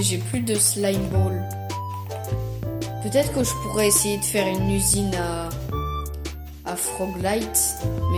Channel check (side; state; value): both; identical; correlation 1.00